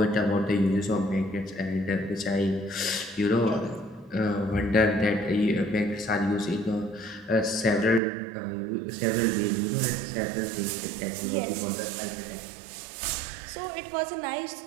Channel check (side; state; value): left; drops out; at 8.0 s